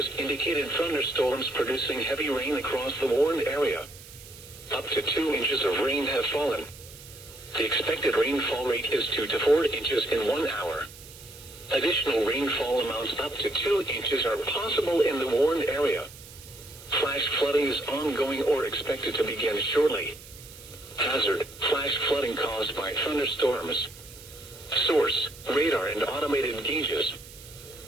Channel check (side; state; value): right; noise; hiss, 18 dB below the sound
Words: indicated thunderstorms producing heavy rain across the warned area. Up to 2 inches of rain have fallen. The expected rainfall rate is 2 to 4 inches in 1 hour. Additional rainfall amounts up to 2 inches are possible in the warned area. Flash flooding is ongoing or expected to begin shortly. Hazard, flash flooding caused by thunderstorms. Source, radar and automated gauges.